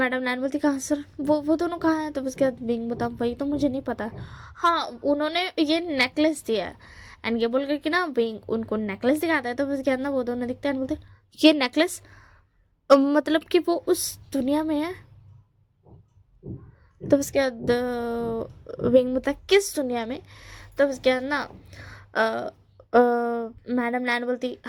लैन बोलती कहाँ सर, वो दोनों कहाँ हैं। तो उसके बाद विंग बता वही तो मुझे नहीं पता। हाँ उन्होंने ये नेकलेस दिया है एंड ये बोल कर कि ना विंग उनको नेकलेस दिखाता है। तो उसके बाद ना वो दोनों दिखते हैं बोलते ये नेकलेस मतलब कि वो उस दुनिया में है। तो उसके बाद विंग बता किस दुनिया में। तो उसके बाद ना मैडम लैन बोलती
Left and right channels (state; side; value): identical; both; correlation 1.00